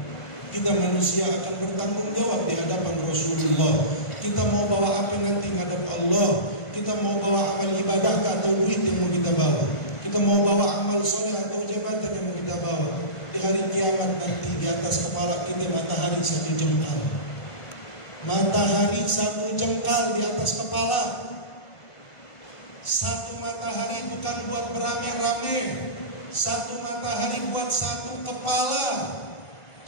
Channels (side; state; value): right; late; 1.5 ms